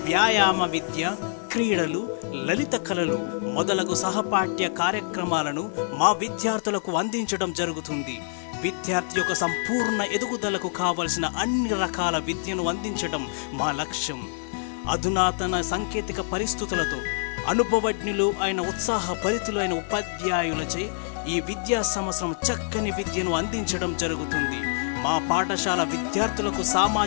వ్యాయామ విద్య, క్రీడలు, లలిత కళలు మొదలగు సహపాఠ్య కార్యక్రమాలను మా విద్యార్థులకు అందించడం జరుగుతుంది. విద్యార్థి యొక్క సంపూర్ణ ఎదుగుదలకు కావలసిన అన్ని రకాల విద్యను అందించడం మా లక్ష్యం. అధునాతన సాంకేతిక పరిస్థితులతో అనుభవజ్ఞులు అయిన ఉత్సాహభరితులైన ఉపాధ్యాయులచే ఈ విద్యా సంవత్సరం చక్కని విద్యను అందించడం జరుగుతుంది. మా పాఠశాల విద్యార్థులకు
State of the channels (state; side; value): silent; right; digital silence